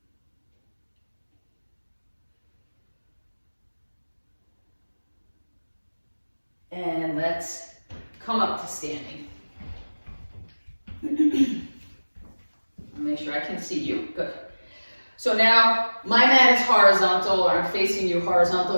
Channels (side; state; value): both; inverted; correlation -1.00